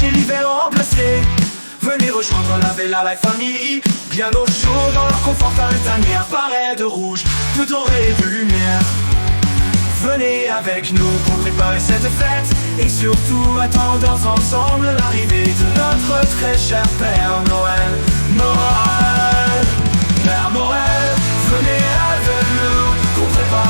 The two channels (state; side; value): inverted; both; correlation -1.00